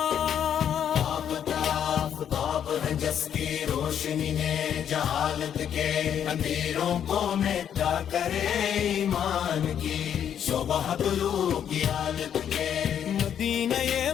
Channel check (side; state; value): right; quieter; 9.1 dB